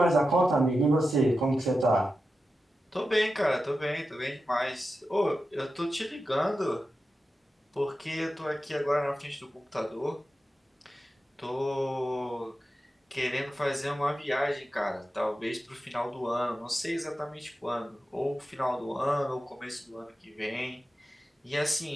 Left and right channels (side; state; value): both; normal; correlation 0.91